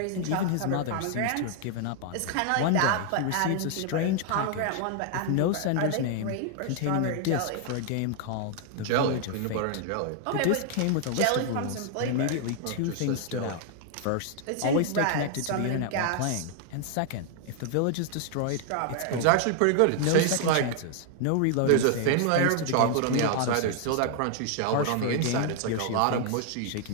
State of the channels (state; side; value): different; both; correlation 0.00